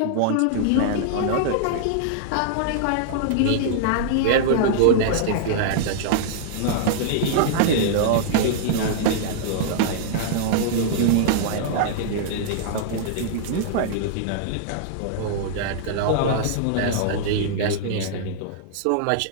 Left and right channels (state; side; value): different; both; correlation -0.01